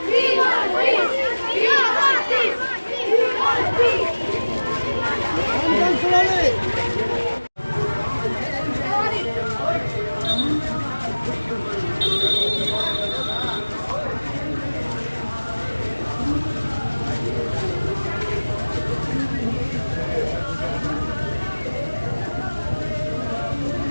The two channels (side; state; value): both; inverted; correlation -1.00